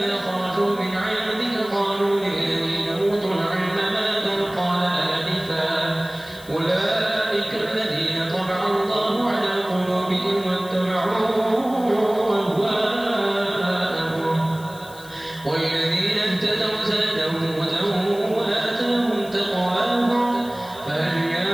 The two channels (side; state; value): left; noise; hiss, 20 dB below the sound